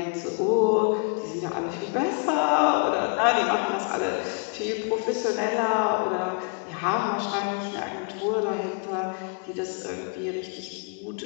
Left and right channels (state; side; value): quieter; right; 37.2 dB